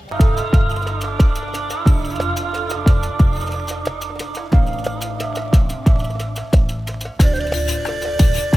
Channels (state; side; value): normal; both; correlation 0.96